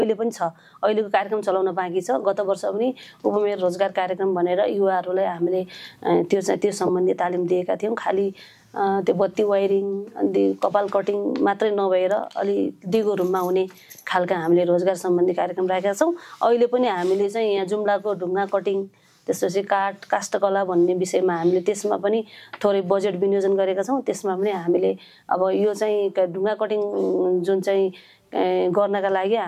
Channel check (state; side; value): identical; both; correlation 1.00